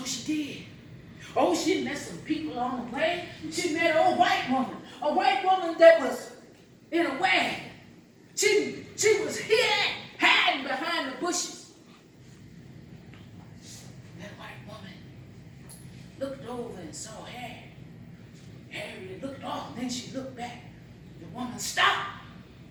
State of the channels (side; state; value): both; identical; correlation 1.00